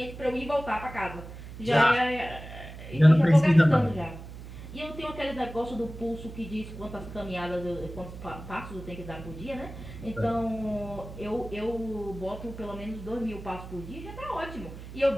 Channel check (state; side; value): noise; right; hum, 13 dB below the sound